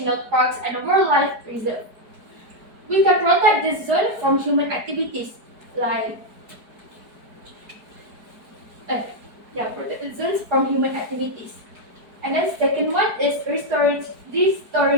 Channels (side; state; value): left; late; 4.7 ms